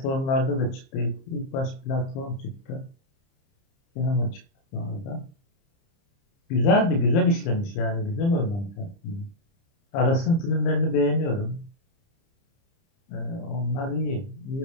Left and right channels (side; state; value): right; late; 30 ms